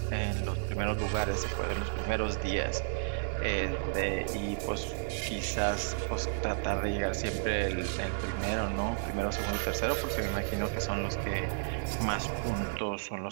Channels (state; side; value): silent; left; digital silence